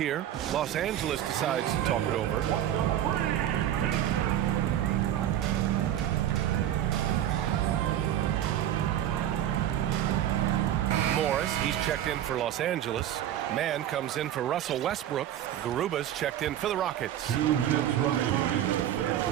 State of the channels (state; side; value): quieter; left; 11.5 dB